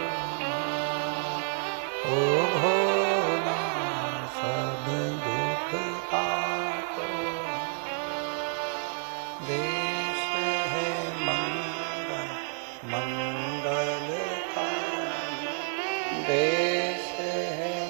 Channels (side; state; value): left; silent; 58 dB below the other